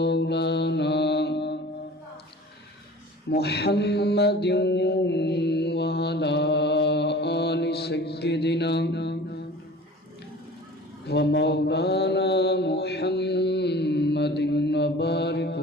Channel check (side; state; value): both; normal; correlation 0.42